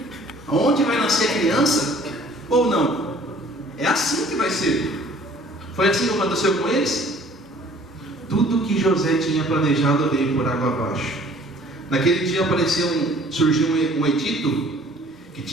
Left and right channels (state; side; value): normal; both; correlation 0.54